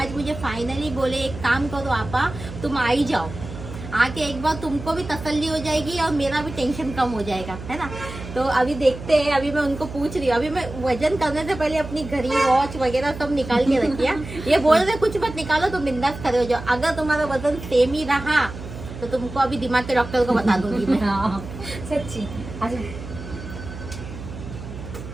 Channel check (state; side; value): noise; right; hum, 11 dB below the sound